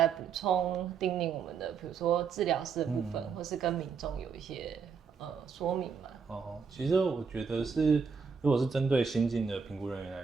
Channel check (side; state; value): left; quieter; 5.9 dB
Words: 补充叮咛我们的，比如说治疗师的部分，或是跟民众有一些说明吗？其实我觉得是，如果是针对新进的评估人员